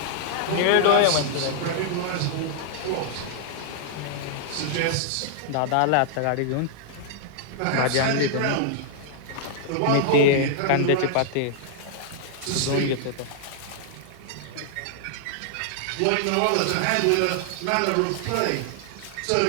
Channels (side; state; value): both; different; correlation 0.00